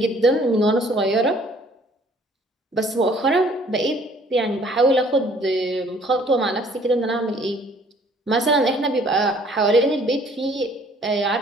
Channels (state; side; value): normal; both; correlation 0.58